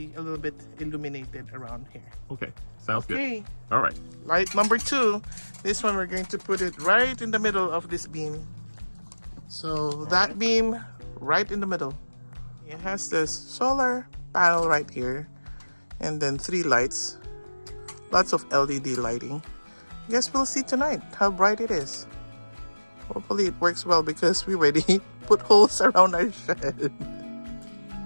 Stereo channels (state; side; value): inverted; both; correlation -1.00